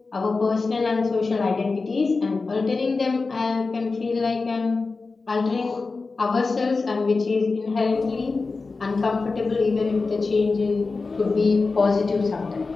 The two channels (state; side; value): quieter; right; 4.0 dB